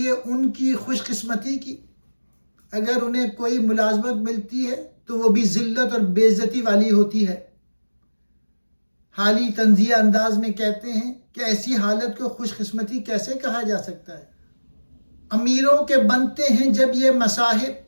ان کی خوش قسمتی کی۔ اگر انہیں کوئی ملازمت ملتی ہے تو وہ بھی ذلت اور بے عزتی والی ہوتی ہے۔ حالی طنزیہ انداز میں کہتے ہیں کہ ایسی حالت کو خوش قسمتی کیسے کہا جا سکتا ہے۔ امیروں کے بنتے ہیں جب یہ مصاحب،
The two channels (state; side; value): inverted; both; correlation -1.00